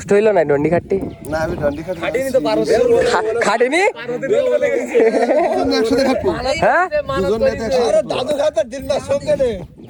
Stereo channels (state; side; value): identical; both; correlation 1.00